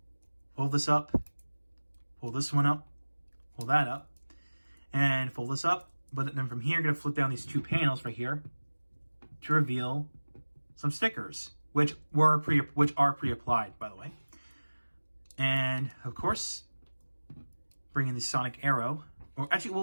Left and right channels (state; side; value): inverted; both; correlation -1.00